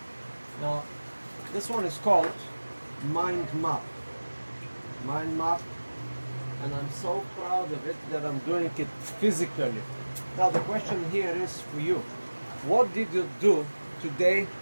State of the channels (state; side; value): inverted; both; correlation -1.00